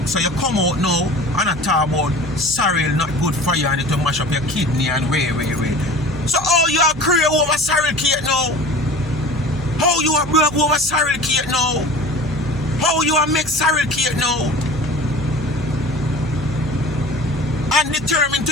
So you come out now and I talk about sorrel not good for you and it will mash up your kidney and way. So all you are create over sorrel cake now? How you are broke over sorrel cake now? How you are make sorrel cake now? And determine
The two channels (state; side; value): noise; right; hum, 15 dB below the sound